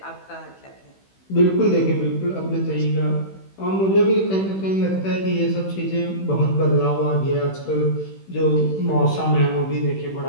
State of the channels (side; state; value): right; late; 16 ms